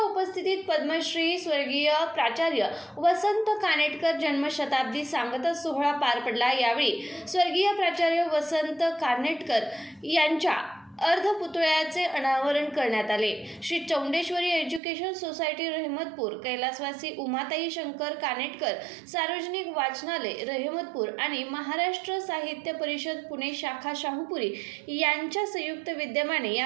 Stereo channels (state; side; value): drops out; left; at 14.8 s